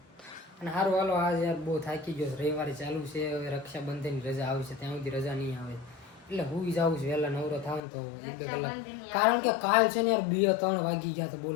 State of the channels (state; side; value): drops out; right; at 7.8 s